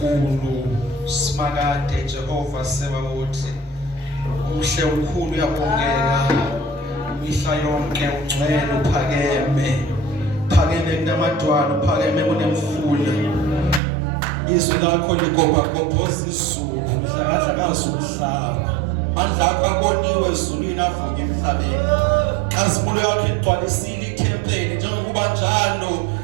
simakade Jehova sebawothi. Umhle ukhulu uyabongeka. Mihla yonke ungcwele uphakeme. Phakeme kunamadwala, uphakeme kunemfula. Izwi lakho ligobagobhoza izulu, lihlakahla umhlaba. Mandla akho aboniwe ezulwini avuke emhlabeni. Kazimulo yakhe igcwalisile ithempeli njengokuba njalo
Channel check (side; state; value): left; drops out; at 13.8 s